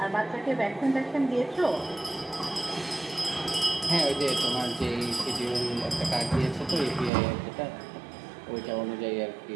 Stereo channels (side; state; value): left; drops out; at 7.1 s